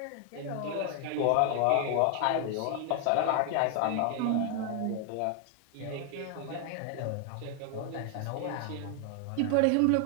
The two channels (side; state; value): both; different; correlation 0.00